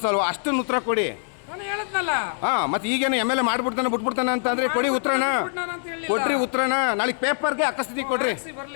ಅಷ್ಟನ್ನು ಉತ್ತರ ಕೊಡಿ. ಹಾಂ, ಮತ್ತೆ ಈಗೇನು ಎಮ್.ಎಲ್.ಎ ಮಾಡ್ಬಿಡ್ತಾನೆ ಬಿಟ್ಬಿಡ್ತಾನೆ ಅಂತಂದರೆ ಕೊಡಿ ಉತ್ತರನ. ಕೊಡ್ರಿ ಉತ್ತರನ. ನಾಳೆ ಪೇಪರ್ಗೆ ಅಕಸ್ಮಾತ್ ಕೊಡ್ರಿ.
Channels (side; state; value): right; silent; digital silence